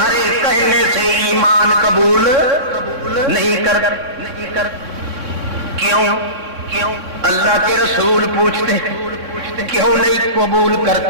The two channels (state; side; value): late; left; 3.6 ms